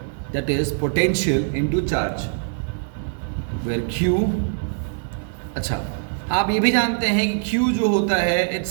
that is potential into charge, where Q. अच्छा, आप ये भी जानते हैं कि Q जो होता है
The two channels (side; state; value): left; silent; 64 dB below the other